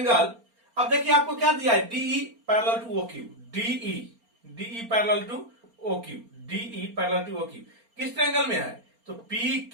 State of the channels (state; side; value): late; left; 4.3 ms